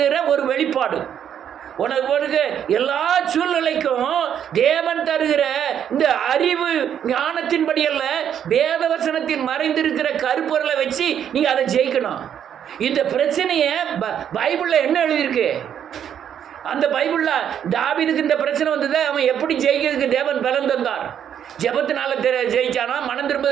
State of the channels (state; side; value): quieter; left; 9.1 dB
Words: ஒரு வெளிப்பாடு. உனக்கு எல்லா சூழ்நிலைக்கும் தேவன் தருகிற இந்த அறிவு ஞானத்தின்படி அல்ல, வேத வசனத்தில் மறைந்திருக்கிற கருப்பொருளை வச்சு நீங்கள் அதை ஜெயிக்கணும். இந்த பிரச்சனையை பைபிளில் என்ன எழுதியிருக்கு? அந்த பைபிளில் தாவீதுக்கு இந்த பிரச்சனை வந்தது, அவன் எப்படி ஜெயிக்கிறதுக்கு தேவன் பலன் தந்தார். ஜெபத்தினால ஜெயிச்சானா, மனம்